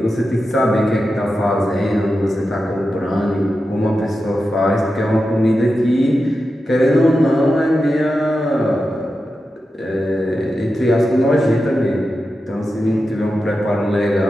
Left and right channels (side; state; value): both; normal; correlation 0.90